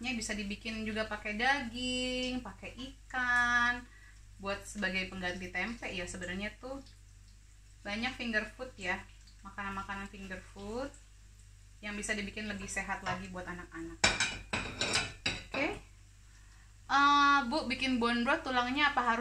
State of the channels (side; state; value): both; identical; correlation 1.00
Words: bisa dibikin juga pakai daging, pakai ikan, buat sebagai pengganti tempe ya. Sebenarnya tuh banyak finger food ya, makanan-makanan finger food yang bisa dibikin lebih sehat lagi buat anak-anak. Oke. Bu, bikin bone broth tulangnya apa